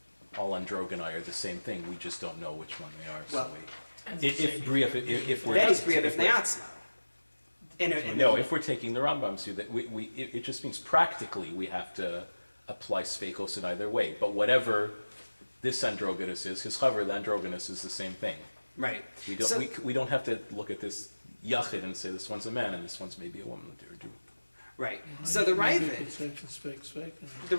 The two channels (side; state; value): both; inverted; correlation -1.00